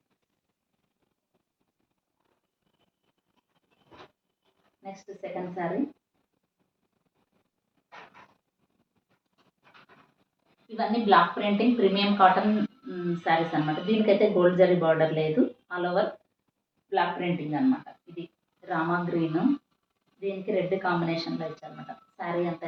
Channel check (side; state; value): both; identical; correlation 1.00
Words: నెక్స్ట్ సెకండ్ శారీ. ఇవన్నీ block printing premium cotton saris అనమాట. దీనికైతే గోల్డ్ జరీ బార్డర్ లేదు. ఆల్ ఓవర్ బ్లాక్ ప్రింటింగ్ అనమాట. ఇది రామా గ్రీన్, దీనికి రెడ్ కాంబినేషన్లో ఇచ్చారనమాట. శారీ అంతా